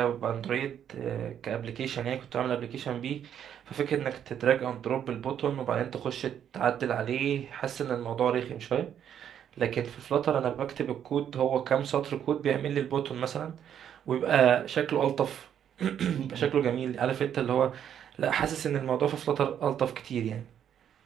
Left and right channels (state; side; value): quieter; left; 9.3 dB